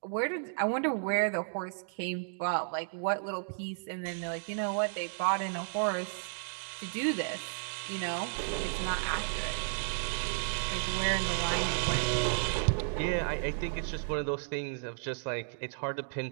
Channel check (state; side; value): silent; left; digital silence